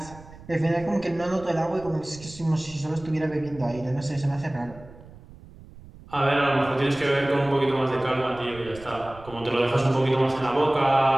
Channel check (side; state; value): right; noise; rumble, 19 dB below the sound